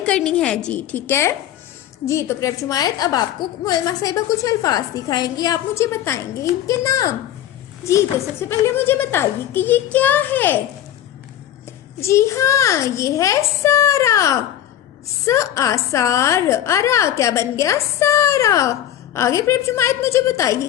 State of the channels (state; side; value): quieter; right; 11.6 dB